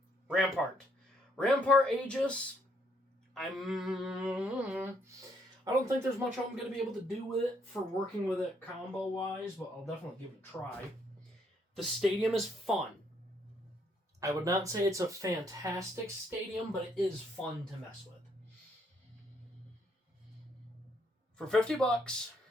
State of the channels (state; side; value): normal; both; correlation 0.71